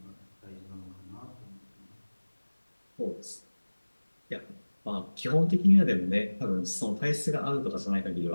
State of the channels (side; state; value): both; inverted; correlation -1.00